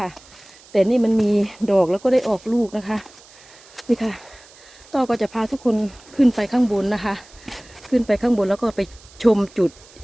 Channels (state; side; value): noise; right; hiss, 24 dB below the sound